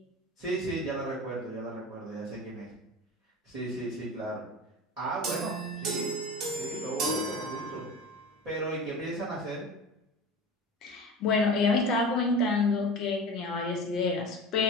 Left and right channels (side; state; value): both; normal; correlation 0.33